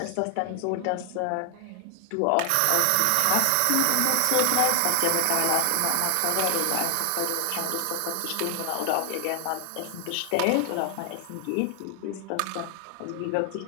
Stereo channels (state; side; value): different; both; correlation 0.00